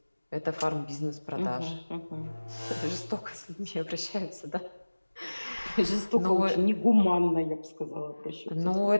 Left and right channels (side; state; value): both; inverted; correlation -1.00